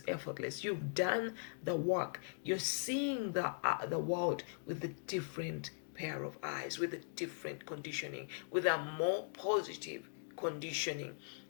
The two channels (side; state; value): right; silent; digital silence